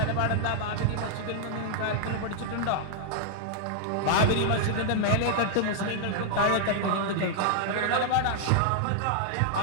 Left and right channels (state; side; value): different; both; correlation -0.01